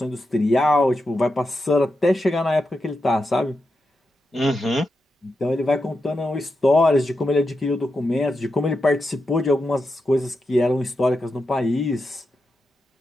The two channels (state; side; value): normal; both; correlation 0.87